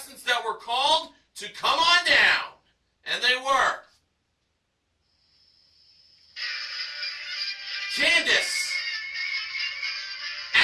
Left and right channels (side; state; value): both; identical; correlation 1.00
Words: that were called to come on down. And they were Candace,